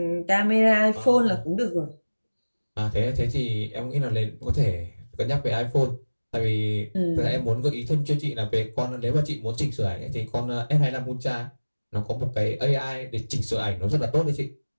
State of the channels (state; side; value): inverted; both; correlation -1.00